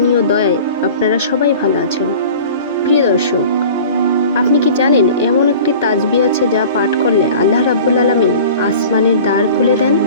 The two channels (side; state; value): both; inverted; correlation -0.42